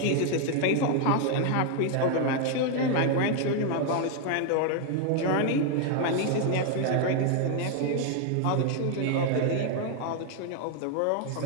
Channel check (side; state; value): both; different; correlation 0.01